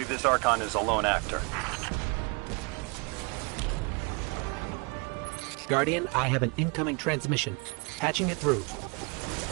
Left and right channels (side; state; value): left; quieter; 32.1 dB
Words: this Archon is a lone actor. Guardian, I have an incoming transmission. Patching it through.